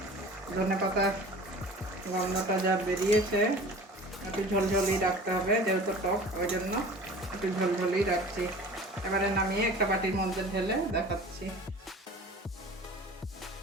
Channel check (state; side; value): normal; both; correlation 0.42